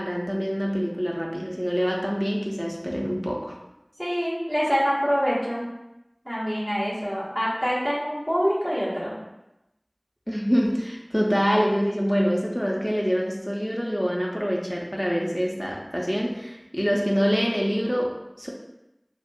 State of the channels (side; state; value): both; identical; correlation 1.00